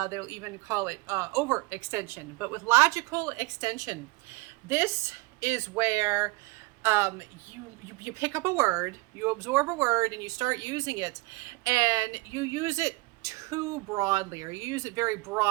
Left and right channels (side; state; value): left; quieter; 24.3 dB